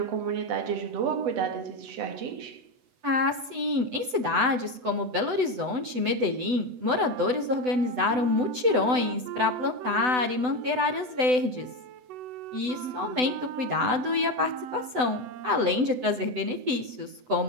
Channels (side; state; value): left; late; 8.0 ms